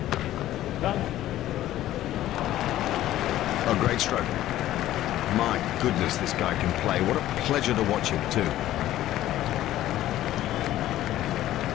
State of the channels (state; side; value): quieter; right; 13.9 dB